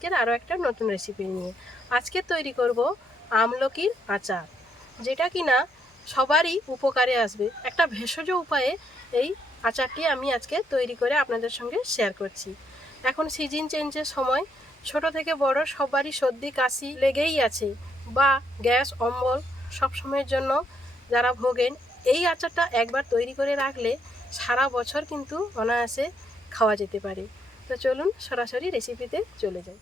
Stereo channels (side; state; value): both; normal; correlation 0.74